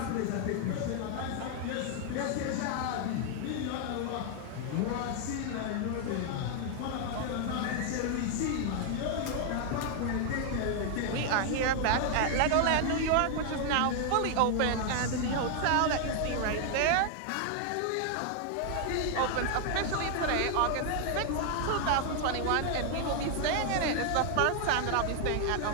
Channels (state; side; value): different; both; correlation 0.00